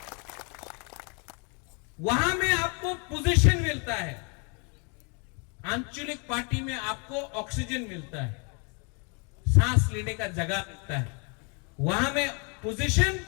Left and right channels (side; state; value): right; quieter; 34.9 dB